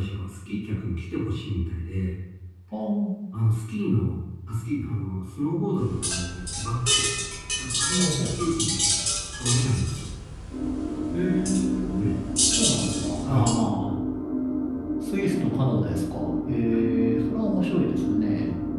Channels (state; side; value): identical; both; correlation 1.00